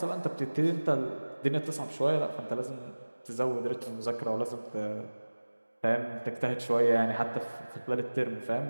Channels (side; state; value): both; inverted; correlation -1.00